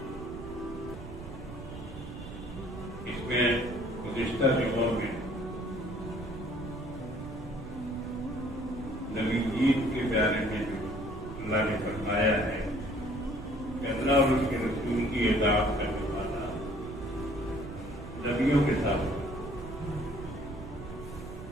اس میں گزشتہ دنوں میں نبی عید کے بارے میں جو اللہ نے فرمایا ہے کہ اللہ اور اس کے رسول کی اطاعت کرنے والا نبیوں کے ساتھ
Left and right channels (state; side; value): noise; right; rumble, 12 dB below the sound